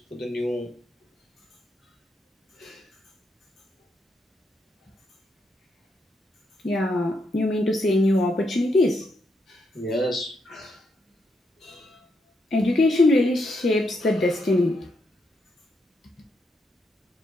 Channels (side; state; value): both; normal; correlation 0.79